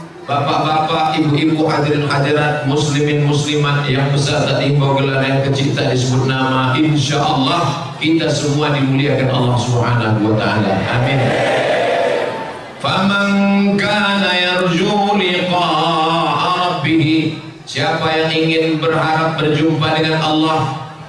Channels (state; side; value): identical; both; correlation 1.00